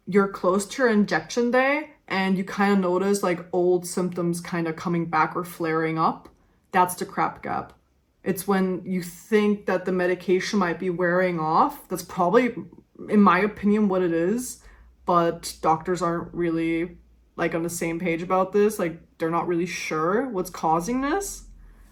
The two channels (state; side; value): identical; both; correlation 1.00